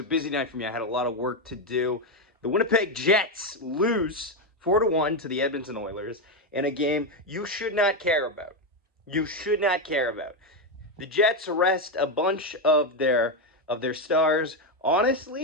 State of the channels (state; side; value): normal; both; correlation 0.08